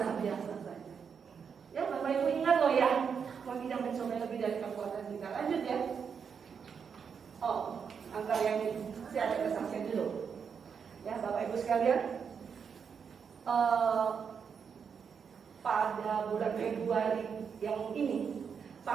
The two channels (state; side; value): quieter; left; 6.6 dB